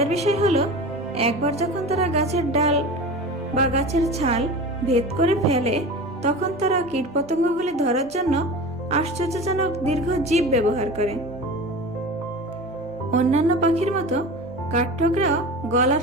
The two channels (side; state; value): both; normal; correlation 0.32